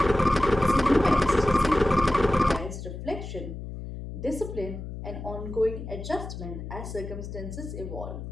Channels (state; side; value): noise; left; hum, 9 dB below the sound